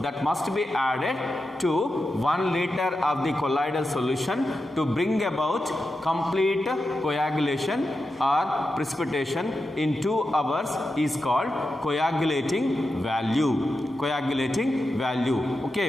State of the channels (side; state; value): both; normal; correlation 0.89